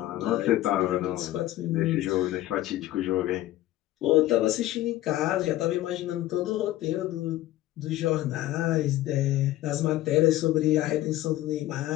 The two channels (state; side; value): quieter; right; 15.3 dB